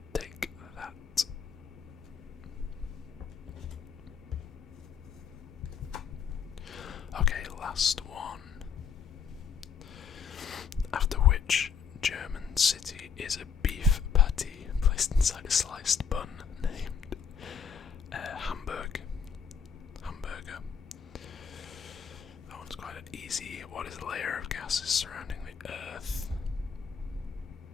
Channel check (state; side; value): quieter; right; 6.6 dB